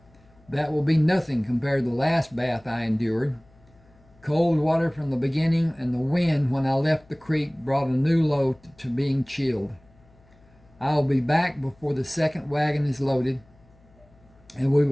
That will be nothing compared to the last bath I endured. Cold water from the beginning, and the wind when I left the creek brought a new low to being chilled. I will be back before the second wagon is loaded, and we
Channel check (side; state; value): left; noise; hum, 29 dB below the sound